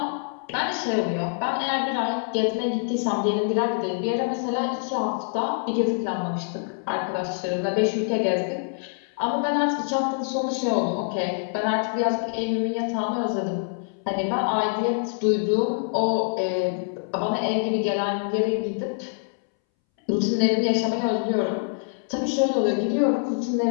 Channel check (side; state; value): right; silent; 62 dB below the other